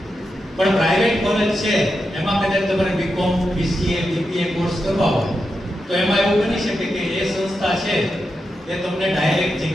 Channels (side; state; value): both; normal; correlation 0.87